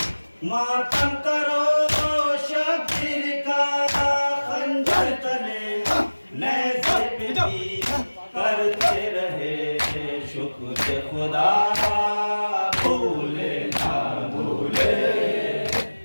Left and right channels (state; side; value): inverted; both; correlation -1.00